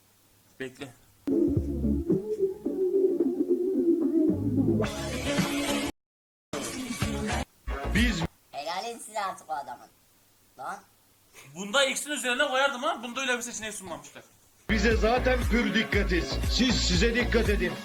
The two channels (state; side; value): identical; both; correlation 1.00